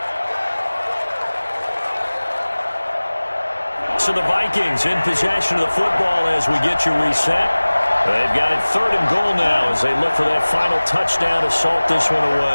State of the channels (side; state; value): both; inverted; correlation -1.00